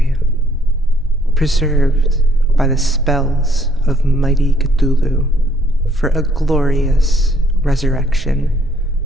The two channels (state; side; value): normal; both; correlation 0.66